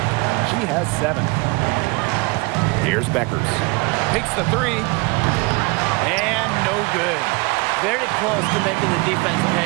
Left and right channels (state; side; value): quieter; left; 26.4 dB